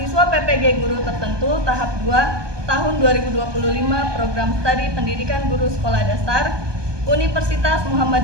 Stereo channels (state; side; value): late; left; 1.2 ms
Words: PPG Guru Tertentu tahap 2 tahun 2025 program studi pendidikan guru sekolah dasar Universitas